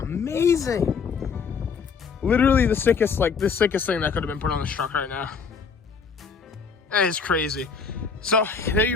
Literally the sickest thing that could have been put on this truck right now. That is crazy. So there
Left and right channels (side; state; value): right; quieter; 5.5 dB